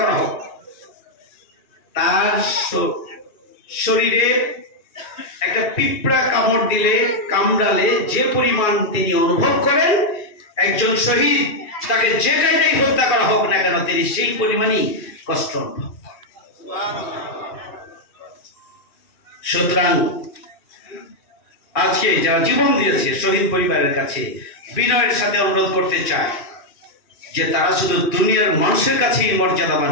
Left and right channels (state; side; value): late; right; 2.4 ms